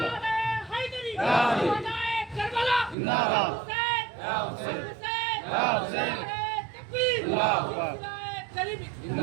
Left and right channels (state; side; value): drops out; left; at 3.0 s